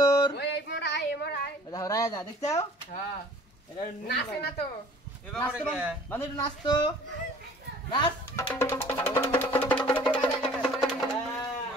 ওই এই মোরাই দেখো রাজা দেখছো হ্যাঁ এটা নাচে না তো বান্দর একটু নাচতো নাচ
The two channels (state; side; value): normal; both; correlation 0.51